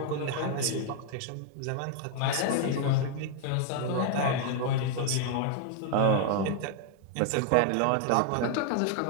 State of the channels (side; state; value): both; different; correlation 0.00